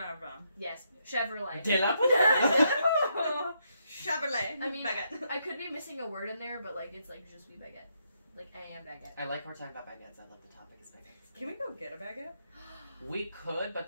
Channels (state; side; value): inverted; both; correlation -0.77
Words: Yes, Chevrolet. De la Chevrolet. I mean, baguette. I could be missing a word in there, but like it's like je suis baguette. Like I am baguette. I like we're talking about baguettes. I love the topic is baguettes. Can we go get a baguette? We could, but